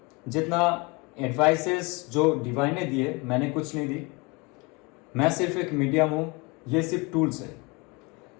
जितना एडवाइसेस जो डिवाइन ने दिए, मैंने कुछ नहीं दी। मैं सिर्फ एक मीडियम हूँ, ये सिर्फ टूल्स है।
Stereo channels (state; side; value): quieter; right; 27.7 dB